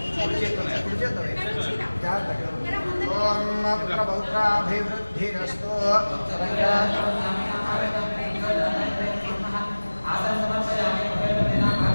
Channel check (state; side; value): inverted; both; correlation -1.00